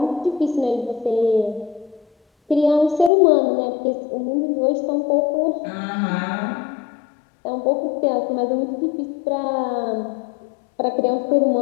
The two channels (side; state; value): right; drops out; at 3.1 s